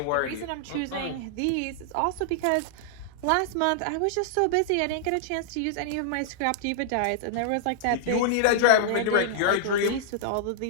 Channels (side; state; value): both; different; correlation -0.01